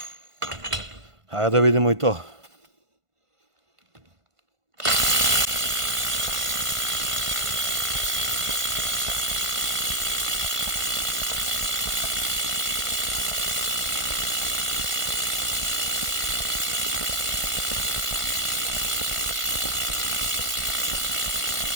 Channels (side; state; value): left; late; 1.5 ms